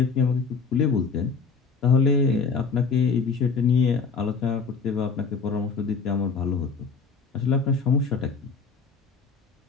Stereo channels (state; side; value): quieter; right; 5.0 dB